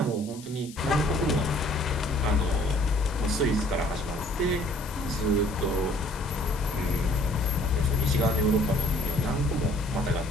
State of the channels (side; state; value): left; noise; hiss, 18 dB below the sound